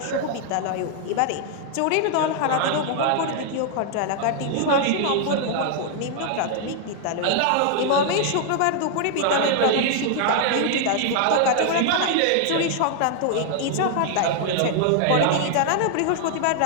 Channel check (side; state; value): both; different; correlation 0.00